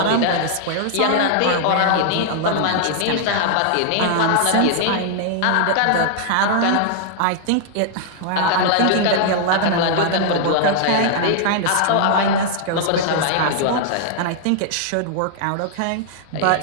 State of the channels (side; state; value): both; different; correlation -0.01